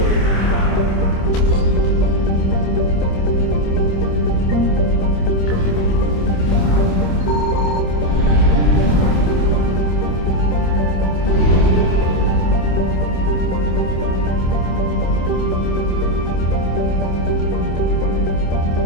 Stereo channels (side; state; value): right; late; 26 ms